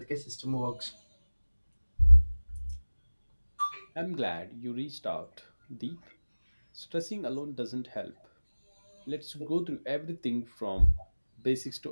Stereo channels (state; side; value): inverted; both; correlation -1.00